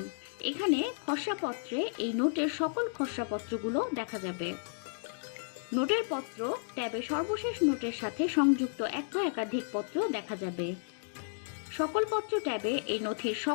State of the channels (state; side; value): silent; right; digital silence